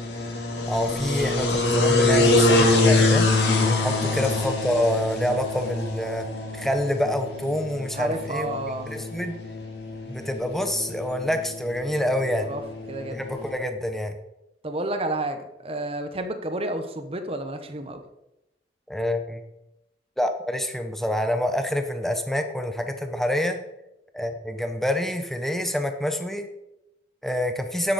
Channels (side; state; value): both; normal; correlation 0.57